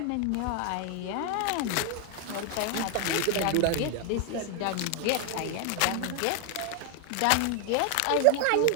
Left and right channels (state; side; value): different; both; correlation 0.01